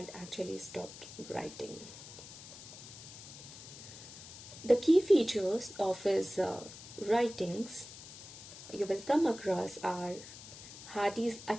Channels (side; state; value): left; noise; hiss, 14 dB below the sound